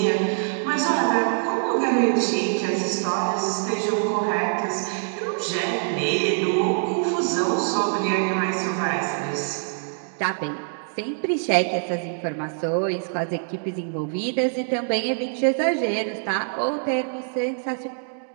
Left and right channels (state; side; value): silent; left; digital silence